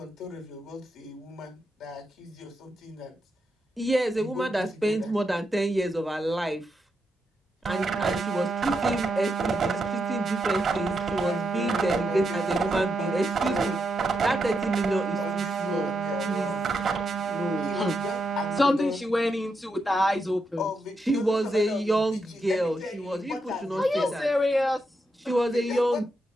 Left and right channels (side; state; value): both; normal; correlation 0.83